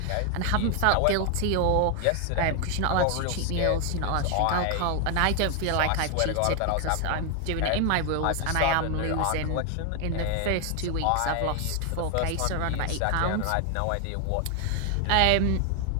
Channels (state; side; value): different; both; correlation 0.00